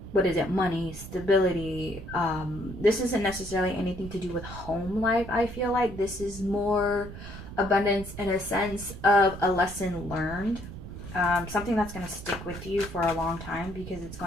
money, stability. This isn't necessarily anything to do with home life. I feel like this is more abundance in a sense of a lesson learned. Something that's going to stick with you for a long time, because it's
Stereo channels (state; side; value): noise; right; rumble, 12 dB below the sound